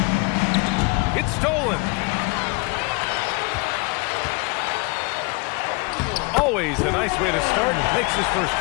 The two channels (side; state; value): right; quieter; 28.8 dB